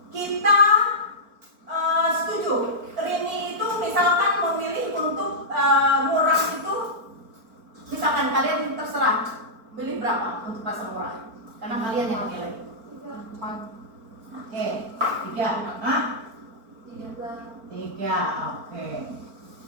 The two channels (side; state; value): left; late; 4.4 ms